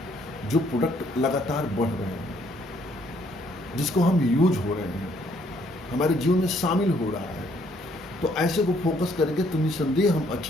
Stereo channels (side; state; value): both; normal; correlation 0.67